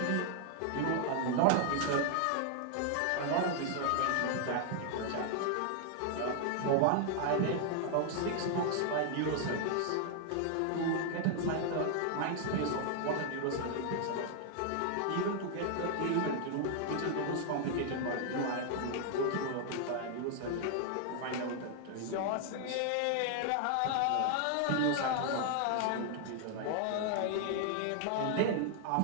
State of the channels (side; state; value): both; different; correlation 0.00